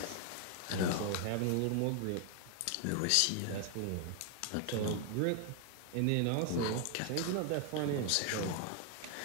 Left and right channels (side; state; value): both; different; correlation 0.00